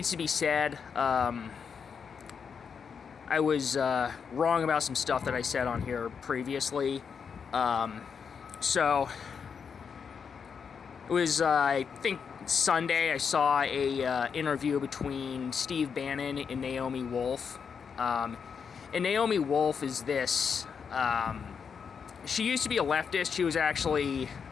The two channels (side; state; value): right; quieter; 6.4 dB